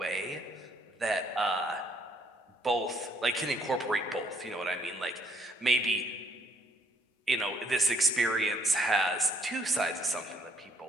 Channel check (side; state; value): both; normal; correlation 0.68